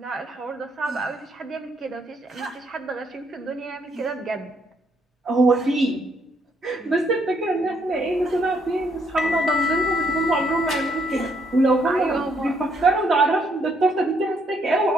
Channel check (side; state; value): both; normal; correlation 0.72